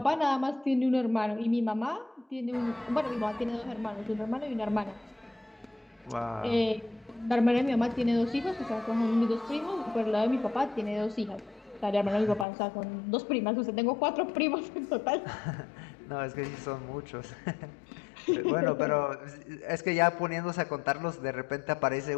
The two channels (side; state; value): right; drops out; at 12.5 s